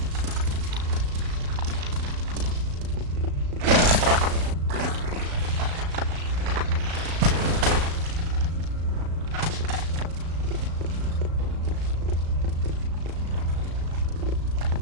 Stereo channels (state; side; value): late; left; 35 ms